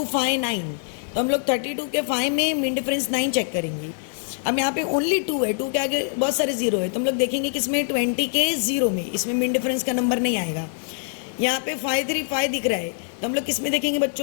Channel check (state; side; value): silent; right; digital silence